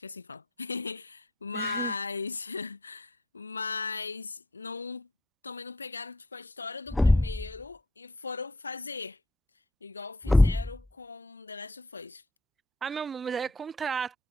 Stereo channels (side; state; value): both; normal; correlation 0.68